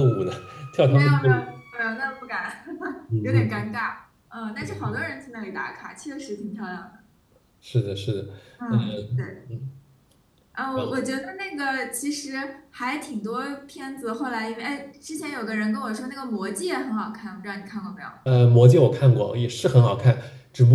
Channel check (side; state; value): both; identical; correlation 1.00